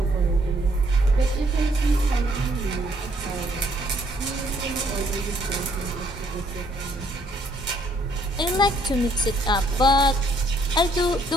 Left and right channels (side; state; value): both; normal; correlation 0.66